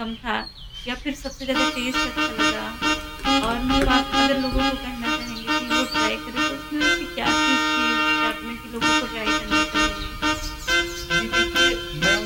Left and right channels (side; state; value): both; identical; correlation 1.00